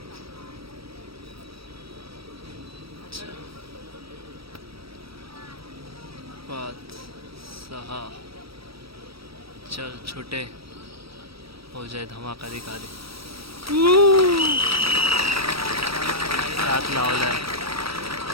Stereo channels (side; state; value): left; late; 0.76 ms